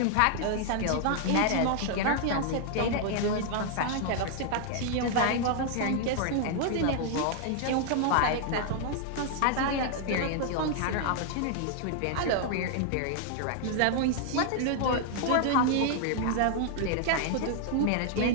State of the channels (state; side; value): different; both; correlation 0.00